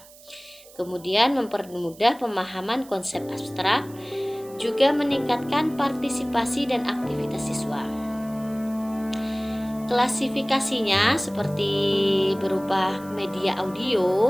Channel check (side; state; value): right; noise; hiss, 22 dB below the sound